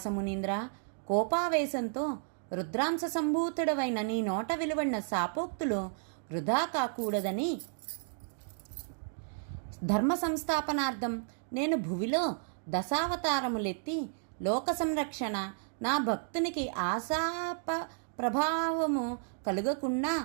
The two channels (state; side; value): silent; left; digital silence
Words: మునీంద్ర, కోపావేశంతో రుద్రాంశ సంభూతుడవైన నీ నోట వెలువడిన శాపోక్తులు వృధా కాకూడదని ధర్మ సంస్థాపనార్థం నేను భువిలో దశావతారములెత్తి లోక సంరక్షణ, నా భక్తునికి ఆశాప ప్రభావము కలుగకుండా